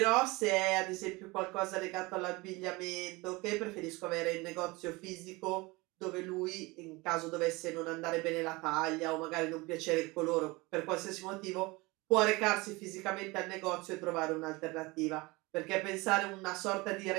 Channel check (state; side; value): quieter; left; 23.7 dB